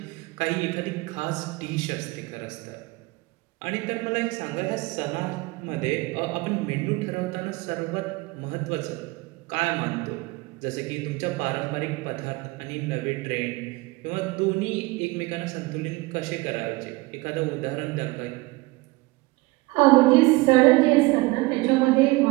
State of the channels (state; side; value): quieter; left; 23.2 dB